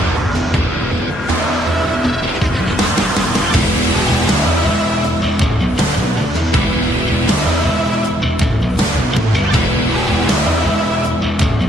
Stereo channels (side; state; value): both; normal; correlation 0.70